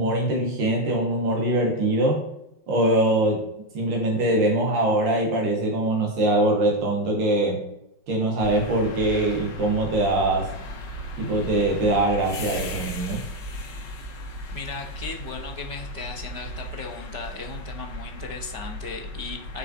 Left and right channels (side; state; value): left; late; 5.1 ms